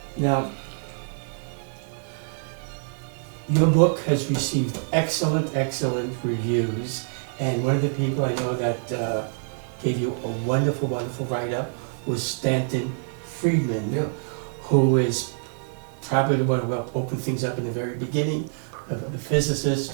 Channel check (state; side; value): silent; left; 57 dB below the other